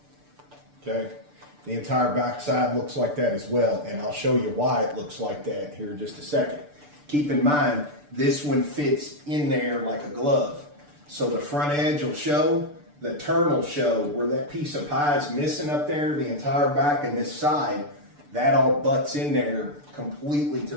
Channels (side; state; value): left; late; 6.8 ms